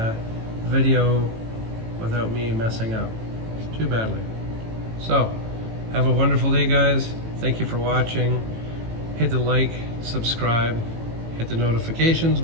video without me messing up too badly. So, have a wonderful day, guys. Thank you for watching. Hit the like, subscribe, hit the notifications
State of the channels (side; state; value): left; late; 18 ms